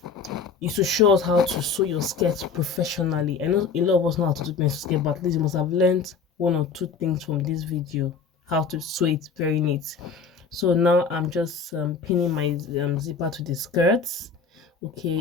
to show us how to sew your skirts professionally. I know a lot of us know how to do pencil skirt, but at least you must have learned 1 or 2 things from this video, how to sew it very neat. So now I'm just pinning my zipper to the skirts.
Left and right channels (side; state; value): right; quieter; 5.3 dB